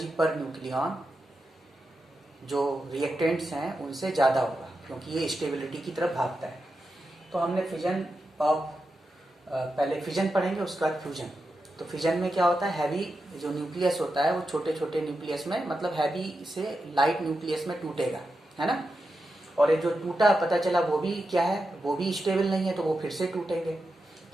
पर न्यूक्लियन जो रिएक्टेंट्स हैं उनसे ज़्यादा होगा, क्योंकि ये स्टेबिलिटी की तरफ भागता है। तो हमने फिजन ऑफ पहले फिजन पढ़ेंगे, उसके बाद फ्यूजन। तो फिजन में क्या होता है, हैवी जो न्यूक्लियस होता है वो छोटे छोटे न्यूक्लियस में, मतलब हैवी से लाइट न्यूक्लियस में टूटेगा, है ना। और ये जो टूटा पता चला वो भी क्या है, वो भी स्टेबल नहीं है, तो वो फिर से टूटेंगे।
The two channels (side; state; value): both; normal; correlation 0.89